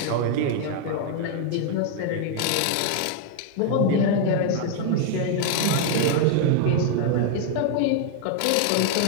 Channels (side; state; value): both; different; correlation 0.00